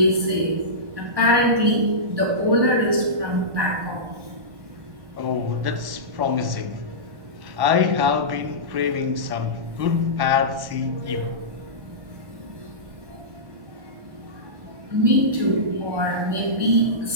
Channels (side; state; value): left; late; 1.1 ms